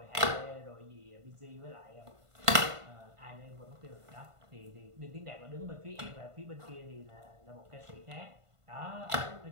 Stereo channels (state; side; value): late; left; 1.5 ms